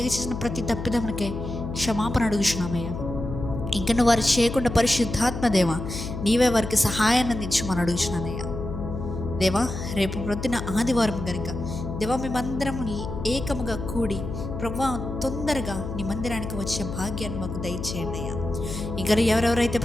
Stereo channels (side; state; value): left; noise; hum, 6 dB below the sound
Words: చేసిన ప్రతి తప్పిదములకే క్షమాపణ అడుగుచున్నామయ్యా. ఇంకా వారు చేయకుండా పరిశుద్ధాత్మ దేవా, నీవే వారికి సహాయాన్ని అందించమని అడుగుచున్నానయ్యా. దేవా, రేపు ప్రొద్దున ఆదివారం కనుక దేవా, మేమందరం ఏకముగా కూడి ప్రభా తొందరగా నీ మందిరానికి వచ్చే భాగ్యాన్ని మాకు దయచేయండి అయ్యా. ఇంకా ఎవరెవరైతే